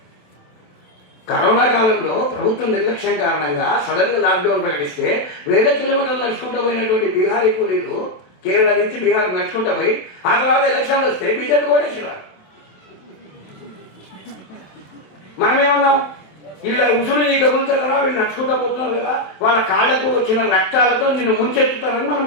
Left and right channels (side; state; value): right; late; 27 ms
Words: కరోనా కాలంలో ప్రభుత్వం నిర్లక్ష్యం కారణంగా సడన్గా లాక్డౌన్ ప్రకటిస్తే వేల కిలోమీటర్లు నడుచుకుంటూ పోయినటువంటి బీహారీ కూలీలు కేరళ నుంచి బీహార్ నడుచుకుంటూ పోయి ఆ తర్వాత ఎలక్షన్లు వస్తే బీజేపీ కోటేశ్వరాలు. మనమేమన్నాం? వీళ్ళ ఉసురు నీ కబులుతారా, వీళ్ళు నడుచుకుంటూ పోతున్నారు కదా, వాళ్ళ కాళ్ళకు వచ్చిన రక్తాలతో నిన్ను ముంచెత్తుతారని